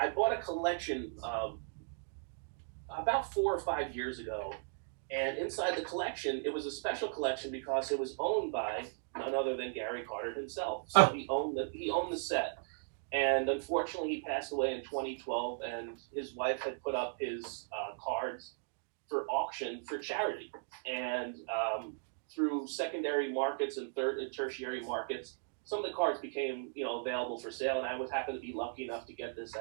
bought a collection about 4 or 5 years ago, and inside the collection, it was a special collection because it was owned by none other than Gary Carter himself. So he owned the set, and unfortunately, he passed away in 2012. And his wife had put up his cards for auction for charity, and through secondary markets and third and tertiary markets, some of the cards became available for sale, and I was happy to be lucky enough to get this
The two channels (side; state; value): left; silent; digital silence